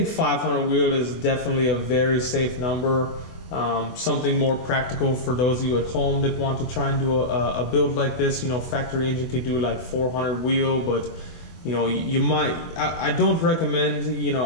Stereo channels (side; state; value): right; late; 24 ms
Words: 500 wheel is definitely a very safe number. Something more practical for those of you at home that want to try and do a build like this. You know, factory engine could do like 400 wheel, but you might, I don't recommend,